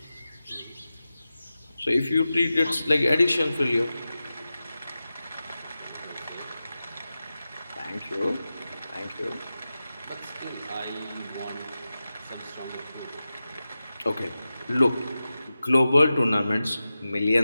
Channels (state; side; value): inverted; both; correlation -0.94